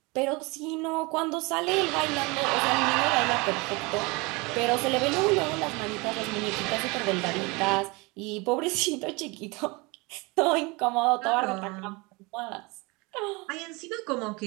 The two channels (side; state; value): left; quieter; 26.2 dB